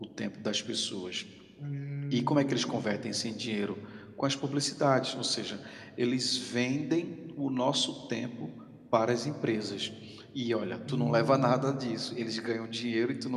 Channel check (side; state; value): both; identical; correlation 1.00